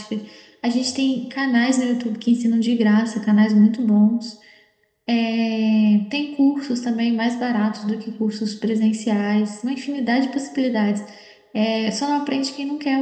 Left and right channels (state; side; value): identical; both; correlation 1.00